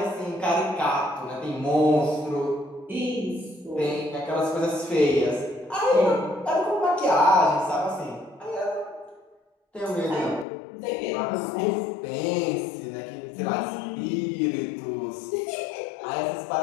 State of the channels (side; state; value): right; drops out; at 10.5 s